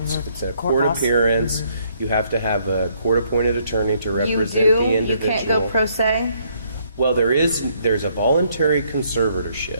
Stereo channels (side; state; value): both; inverted; correlation -0.68